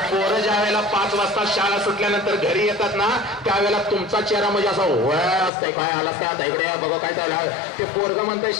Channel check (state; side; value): drops out; right; at 5.5 s